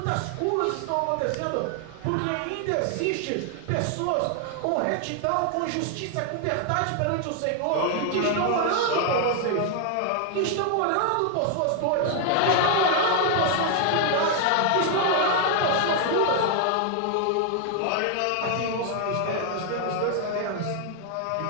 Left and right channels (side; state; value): both; different; correlation 0.00